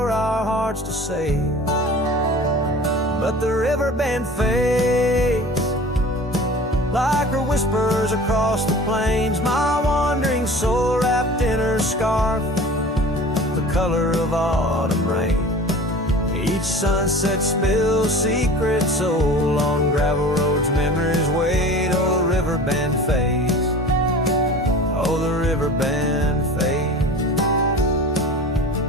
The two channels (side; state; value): both; normal; correlation 0.40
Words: our hearts to save. But the river band fades like her whispers across the plains. My wandering soul wrapped in her scarf, the color of autumn rain. Each sunset spills secret soul on gravel roads, memories wait. Oh, the river band fades. Oh, the river band fades.